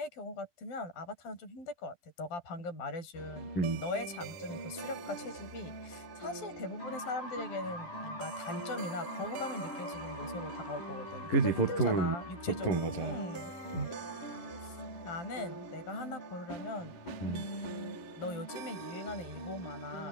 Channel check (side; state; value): right; late; 12 ms